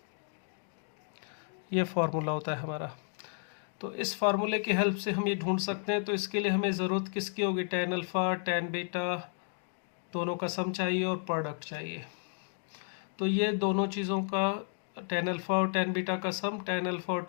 ये फार्मूला होता है हमारा। तो इस फार्मूले की हेल्प से हम ये ढूंढ सकते हैं। तो इसके लिए हमें ज़रूरत किसकी होगी, tan अल्फ़ा tan बीटा दोनों का सम चाहिए और प्रोडक्ट चाहिए। तो ये दोनों चीज़ों का tan अल्फ़ा और tan बीटा का सम, tan अल्फ़ा और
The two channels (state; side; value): silent; right; 56 dB below the other